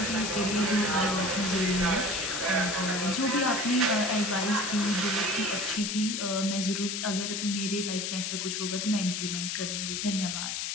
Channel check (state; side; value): noise; left; hiss, 2 dB below the sound